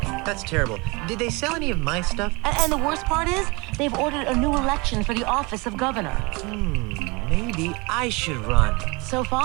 That's terrible. Did they sell any of my stuff? And the worst part is, they've ordered a new election for the office of governor. Maybe I should run. So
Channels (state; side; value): quieter; left; 26.9 dB